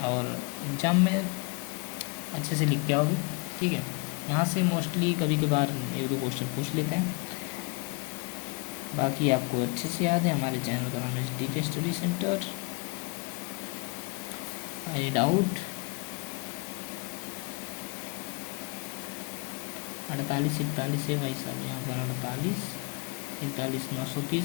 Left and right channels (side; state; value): right; quieter; 29.8 dB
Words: और एग्ज़ाम में अच्छे से लिख के आओगे, ठीक है। यहाँ से मोस्टली कभी कभार 1 2 क्वेश्चन पूछ लेते हैं, बाकी आपको अच्छे से याद है। हमारे चैनल का नाम है DK study centre. Any doubt, 48 41 है भाई साहब, यहाँ पर 48 41